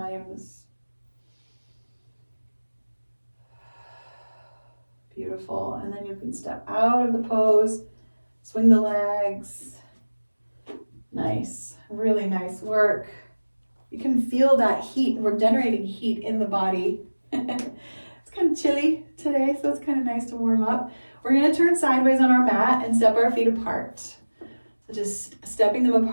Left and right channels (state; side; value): inverted; both; correlation -1.00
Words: Beautiful. And then you can step out of the pose, swing the legs. Nice. Really nice work. You can feel that heat. We're generating heat in the body. It's kind of chilly today, so it's kind of nice to warm up. We're going to turn sideways on our mat and step our feet apart. So just stepping them